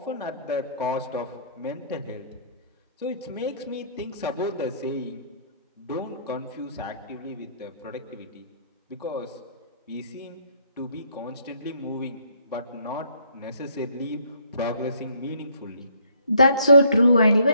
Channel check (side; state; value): both; inverted; correlation -0.65